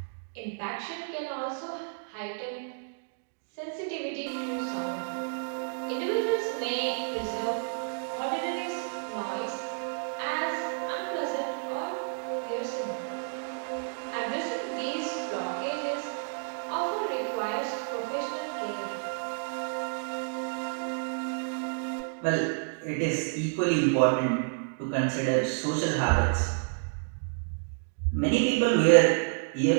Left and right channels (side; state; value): left; silent; digital silence